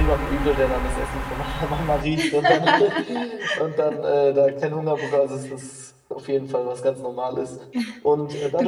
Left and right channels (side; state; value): both; identical; correlation 1.00